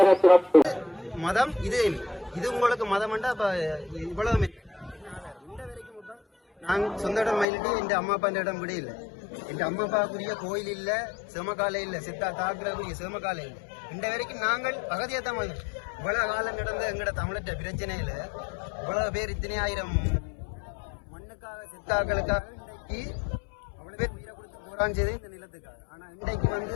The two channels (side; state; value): right; drops out; at 7.5 s